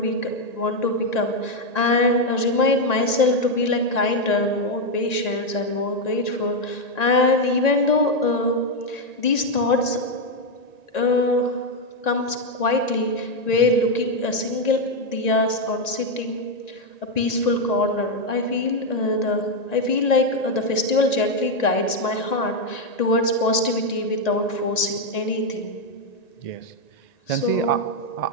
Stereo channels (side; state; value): right; late; 1.9 ms